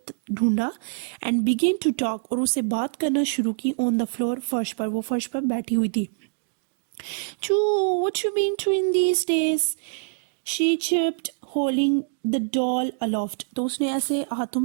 ढूंढा एंड बिगेन टू टॉक, और उससे बात करना शुरू की ऑन द फ्लोर, फर्श पर, वो फर्श पर बैठी हुई थी। Choo, what you been doing these days? She chirped, holding the doll aloft. तो उसने ऐसे हाथों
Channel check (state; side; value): silent; left; digital silence